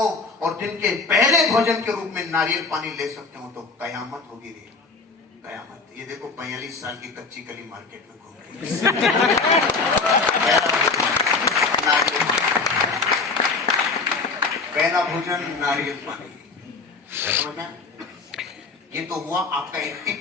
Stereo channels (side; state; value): right; quieter; 4.2 dB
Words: और दिन के पहले भोजन के रूप में नारियल पानी ले सकते हो तो कयामत होगी रे, कयामत। ये देखो 45 साल की कच्ची कली मार्केट में घूम रही पहला भोजन नारियल पानी, समझ? ये तो हुआ आपका